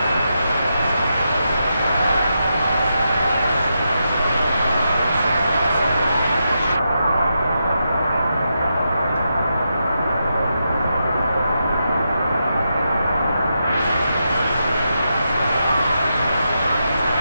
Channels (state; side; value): inverted; both; correlation -0.85